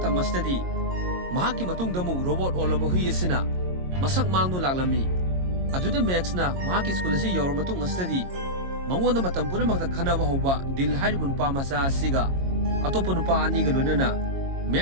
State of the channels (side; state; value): left; late; 22 ms